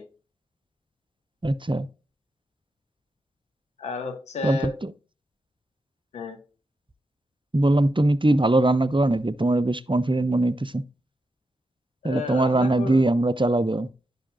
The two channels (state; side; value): normal; both; correlation 0.85